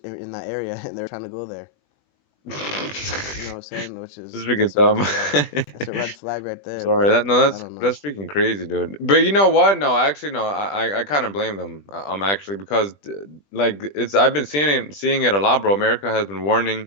that area and they're trying to go there. You know what I'm this saying? Which is is freaking that's a red dumb. flag. That's a red flag right there. Sorry, But that no, I don't know. that's freaking crazy, dude. But you know what? No, actually, no. I kind of blame them. Actually because like it's I've been seeing it a lot, bro. America has been warning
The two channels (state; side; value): late; right; 20 ms